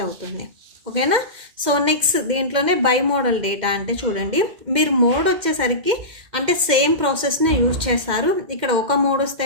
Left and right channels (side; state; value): left; late; 2.1 ms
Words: అవుతుంది. ఓకేనా. సో నెక్స్ట్ దీంట్లోనే బై మోడల్ డేటా అంటే చూడండి, మీరు మోడ్ వచ్చేసరికి అంటే సేమ్ ప్రాసెస్ని యూజ్ చేస్తారు. ఇక్కడ ఒక మోడ్